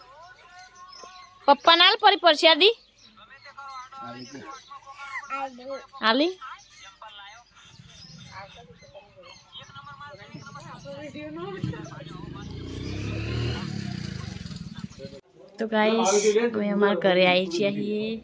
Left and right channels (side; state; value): both; identical; correlation 1.00